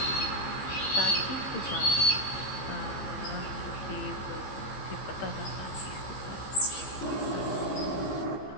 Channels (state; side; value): late; right; 15 ms